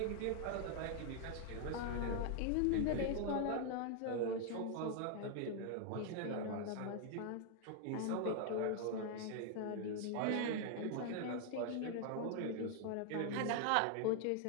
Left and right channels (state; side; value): different; both; correlation 0.00